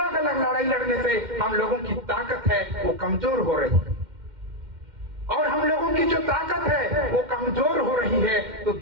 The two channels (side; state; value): left; late; 2.1 ms